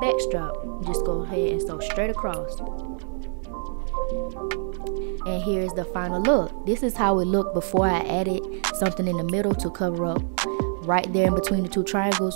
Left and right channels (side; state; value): left; silent; 61 dB below the other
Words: strap. Just go ahead and sew straight across. And here's the final look. This is how it looked before I added something in the middle to cover up right there in between the 2